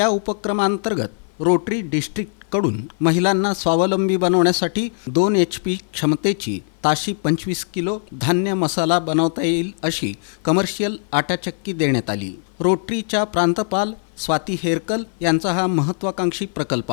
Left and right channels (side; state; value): right; silent; 56 dB below the other